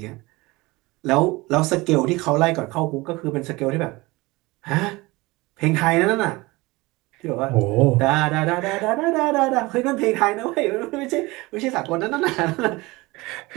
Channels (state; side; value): quieter; left; 22.2 dB